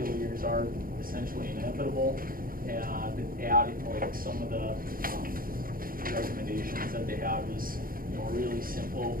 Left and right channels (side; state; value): left; late; 0.42 ms